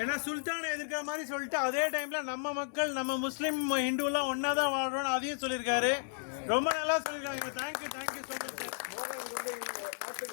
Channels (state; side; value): silent; right; 55 dB below the other